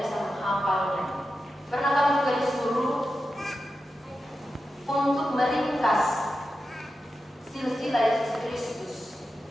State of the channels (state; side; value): normal; both; correlation 0.91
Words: bisa menghafalnya. Pernah kami juga disuruh untuk meringkas silsilah Yesus Kristus.